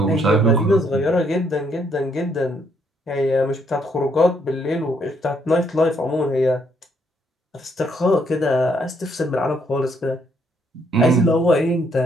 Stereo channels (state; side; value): normal; both; correlation 0.71